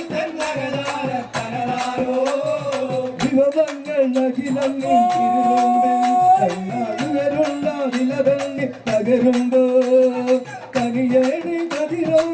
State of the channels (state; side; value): identical; both; correlation 1.00